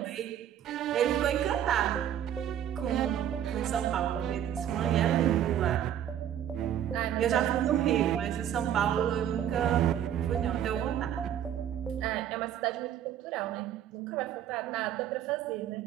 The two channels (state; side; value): quieter; left; 10.4 dB